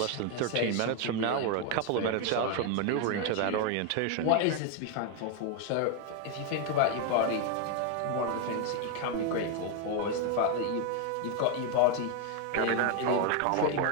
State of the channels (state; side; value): different; both; correlation 0.01